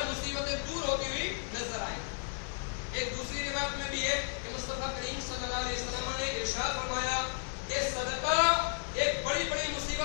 مصیبتیں دور ہوتی ہوئی نظر آئیں۔ ایک دوسری روایت میں بھی ہے کہ مصطفیٰ کریم صلی اللہ علیہ وسلم نے ارشاد فرمایا کہ صدقہ ایک بڑی بڑی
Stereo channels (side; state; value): right; silent; digital silence